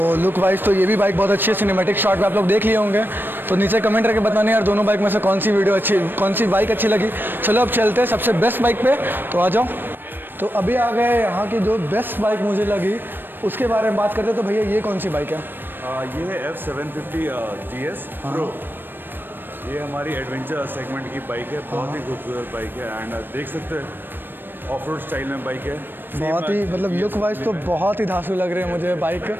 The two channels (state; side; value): late; left; 0.095 ms